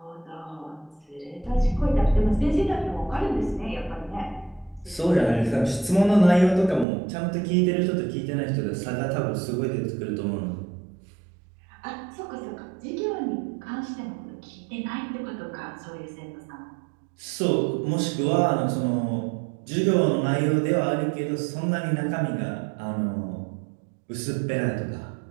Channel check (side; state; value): left; drops out; at 6.9 s